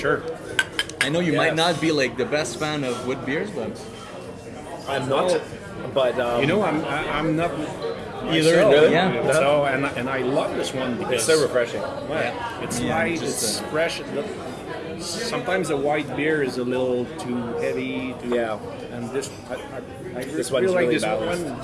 I know you Yeah. might not be like the best fan of wood beers, but I'm not, but You know, I'm not Either, myself, really? Yeah. you know, So and I love this one because it's so refreshing. Well, it's Yeah, light, just, it's fresh. Sometimes a white beer is a little too heavy. Yeah. And this, I This feel one's like really this balanced. one.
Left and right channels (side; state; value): both; identical; correlation 1.00